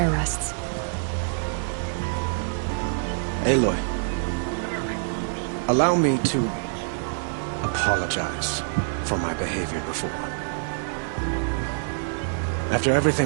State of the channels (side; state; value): left; silent; 61 dB below the other